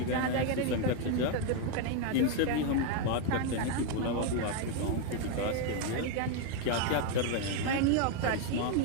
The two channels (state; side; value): different; both; correlation 0.01